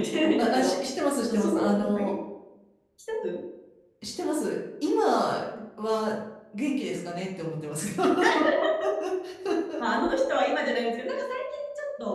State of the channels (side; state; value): both; identical; correlation 1.00